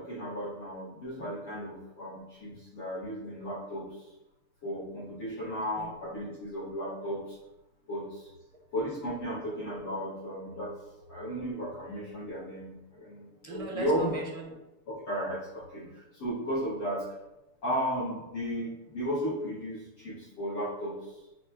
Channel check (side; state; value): right; late; 6.8 ms